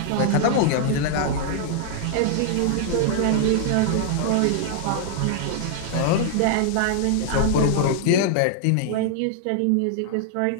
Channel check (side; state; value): both; different; correlation -0.01